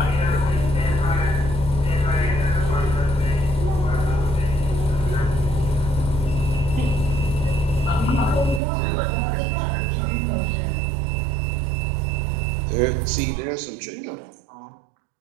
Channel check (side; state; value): left; drops out; at 8.6 s